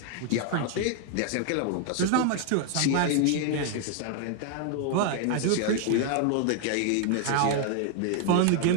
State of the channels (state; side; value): different; both; correlation 0.00